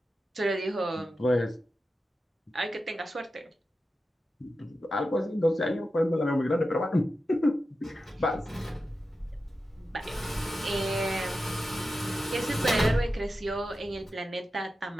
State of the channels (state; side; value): normal; both; correlation 0.91